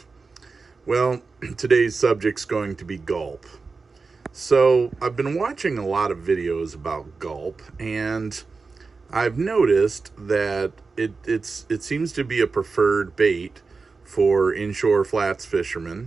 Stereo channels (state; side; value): quieter; left; 4.3 dB